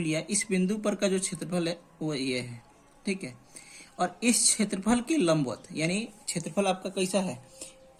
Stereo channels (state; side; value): identical; both; correlation 1.00